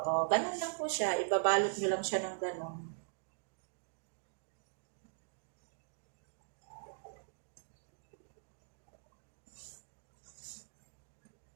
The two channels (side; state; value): left; silent; digital silence